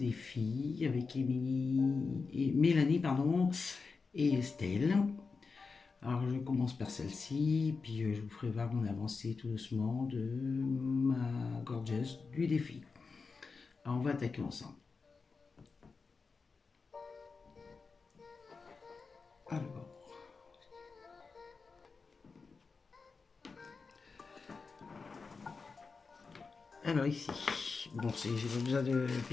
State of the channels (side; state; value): right; quieter; 4.6 dB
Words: avec Mélanie pardon, et Estelle. Alors je commence par celle-ci, puis je vous ferai voir mon avancée tout doucement de ma Gorgeous du défi. Alors on va attaquer ensemble. Alors ici, bon, j'ai pas besoin de